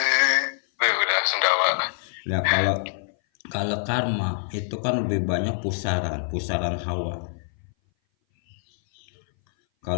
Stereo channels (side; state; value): right; silent; 58 dB below the other